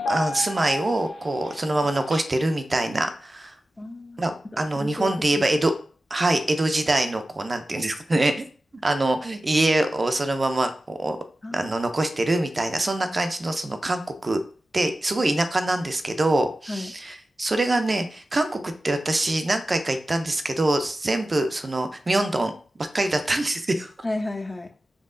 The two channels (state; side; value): normal; both; correlation 0.95